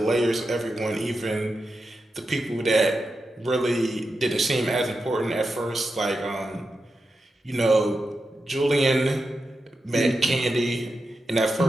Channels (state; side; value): normal; both; correlation 0.89